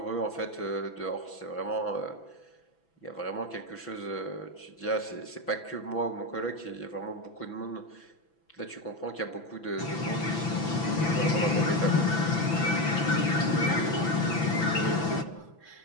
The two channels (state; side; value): late; right; 6.0 ms